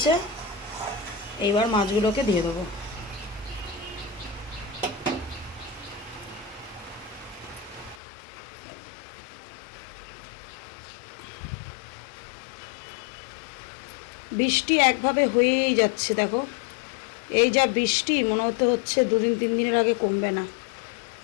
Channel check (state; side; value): drops out; right; at 8.0 s